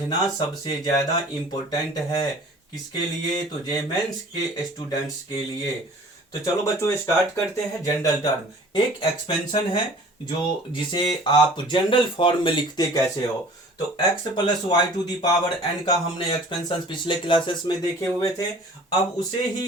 सबसे ज्यादा इंपॉर्टेंट है। किसके लिए? तो जीमेंस के स्टूडेंट्स के लिए। तो चलो बच्चों स्टार्ट करते हैं। जनरल टर्म एक एक्सपेंशन है जिसे आप जनरल फॉर्म में लिखते कैसे हो। तो x plus Y to the power n का हमने एक्सपेंशन पिछले क्लासेस में देखे हुए थे। अब उसे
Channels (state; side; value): normal; both; correlation 0.47